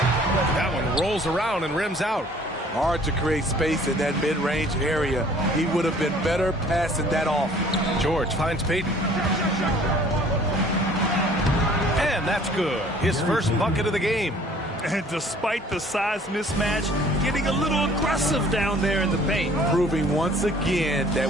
That one rolls around and rims out. Hard to create space in that mid-range area. He would have been better passing that off. George finds Payton. And that's good. His first bucket of the game. And despite the size mismatch, getting a little aggressive down there in the paint. Proving once again that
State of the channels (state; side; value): normal; both; correlation 0.54